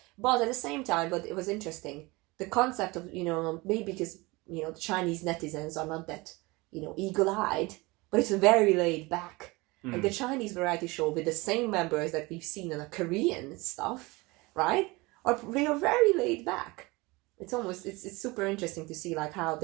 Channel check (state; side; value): quieter; left; 23.6 dB